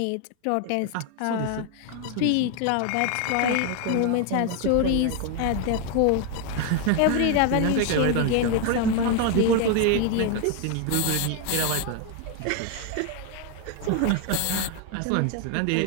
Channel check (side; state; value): both; different; correlation 0.01